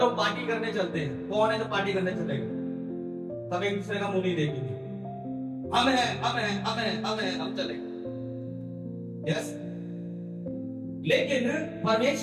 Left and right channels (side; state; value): both; identical; correlation 1.00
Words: पार्टी करने चलते हैं, कौन है जो पार्टी करने चलेगा? सब एक दूसरे का मुंह नहीं देखेंगे, हम हैं हम हैं हम हैं हम हैं हम चलेंगे। यस, लेकिन